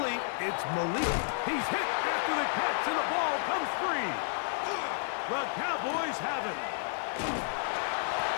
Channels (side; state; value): right; silent; digital silence